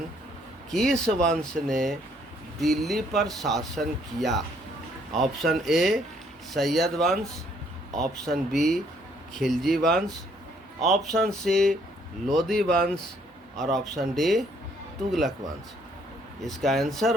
किस वंश ने दिल्ली पर शासन किया? ऑप्शन ए सैयद वंश, ऑप्शन बी खिलजी वंश, ऑप्शन सी लोदी वंश और ऑप्शन डी तुगलक वंश। इसका आंसर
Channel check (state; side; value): normal; both; correlation 0.66